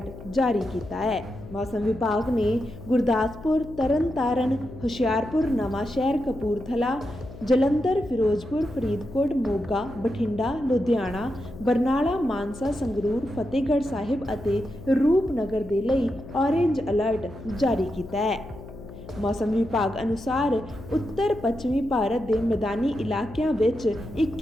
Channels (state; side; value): noise; left; hum, 15 dB below the sound